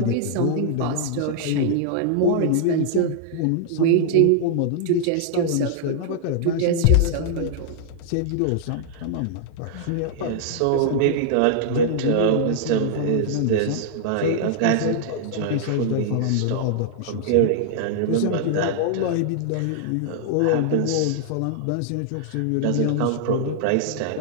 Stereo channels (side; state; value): both; different; correlation -0.01